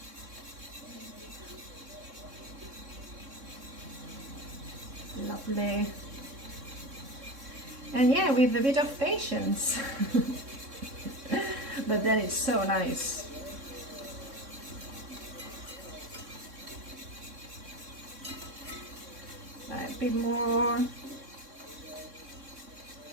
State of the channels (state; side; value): late; left; 3.6 ms